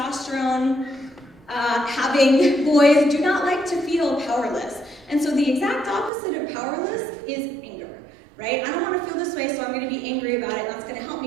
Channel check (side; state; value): left; drops out; at 6.1 s